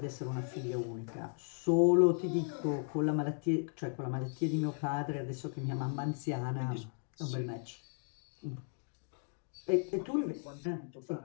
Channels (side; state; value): right; silent; 54 dB below the other